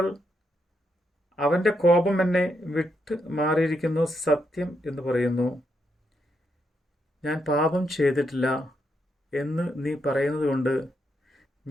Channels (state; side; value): normal; both; correlation 0.80